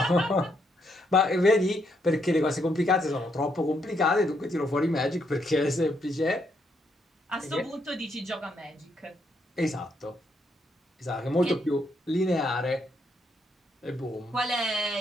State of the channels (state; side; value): normal; both; correlation 0.76